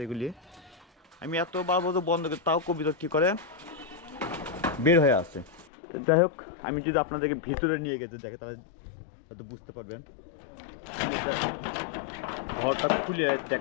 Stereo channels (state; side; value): drops out; right; at 5.7 s